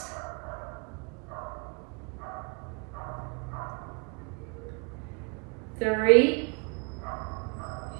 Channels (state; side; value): quieter; left; 32.0 dB